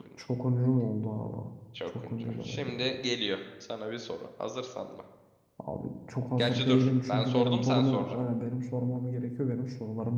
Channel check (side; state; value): both; identical; correlation 1.00